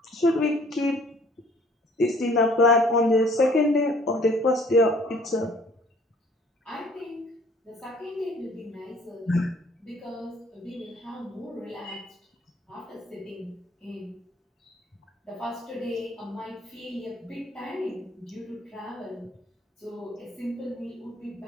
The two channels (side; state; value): both; normal; correlation 0.57